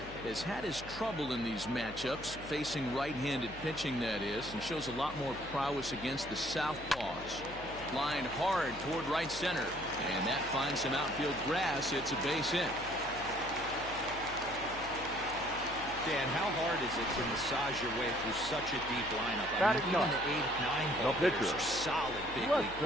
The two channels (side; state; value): left; noise; hum, 15 dB below the sound